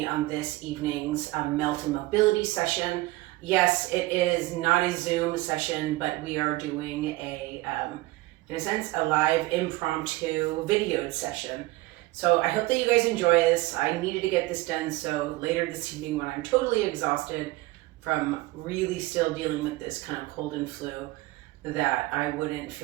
on this evening's Melt and Mobility session. Yes, it is not a Zoom session, but we are doing in a sense, a live impromptu videoed session. So I hope that you guys enjoy this. I needed to get this done so later this evening when I'm totally exhausted from really still dealing with this kind of cold and flu, that I wouldn't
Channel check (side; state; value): left; quieter; 19.8 dB